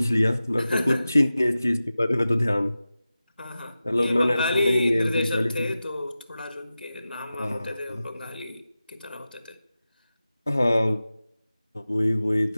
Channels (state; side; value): inverted; both; correlation -0.94